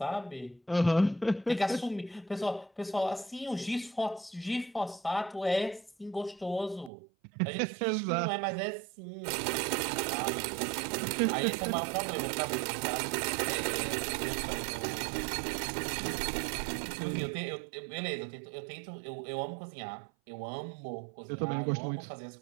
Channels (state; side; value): drops out; left; at 6.9 s